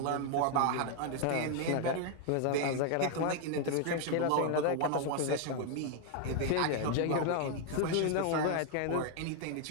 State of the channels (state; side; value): different; both; correlation 0.00